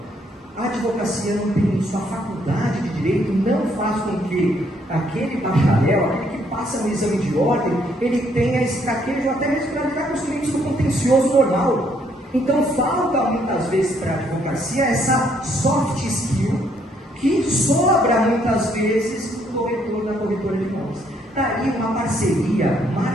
A advocacia não tem isso, a faculdade de direito não faz com que aquele bacharel, aquele que passa no exame de ordem, ele tenha esse traquejo até mesmo para lidar com os clientes do contencioso normal. Então falta muitas vezes para a advocacia essa soft skill que sobra muitas vezes no corretor da corretora de imóveis. Daí uma parceria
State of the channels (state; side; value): normal; both; correlation 0.69